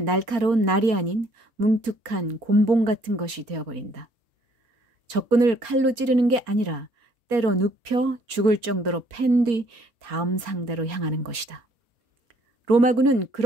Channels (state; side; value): late; left; 4.3 ms